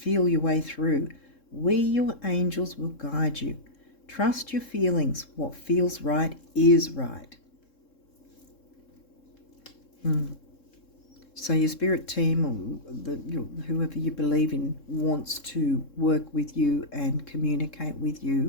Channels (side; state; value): right; late; 3.7 ms